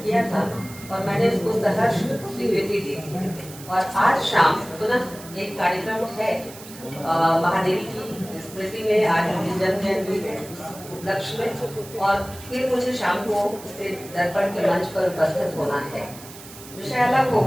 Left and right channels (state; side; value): noise; right; hiss, 17 dB below the sound